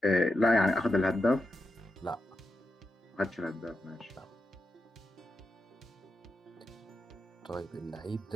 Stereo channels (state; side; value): normal; both; correlation 0.87